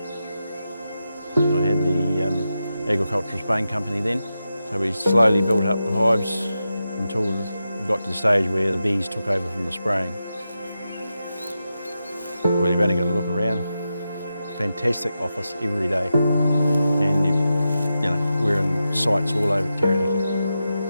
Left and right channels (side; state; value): both; inverted; correlation -0.89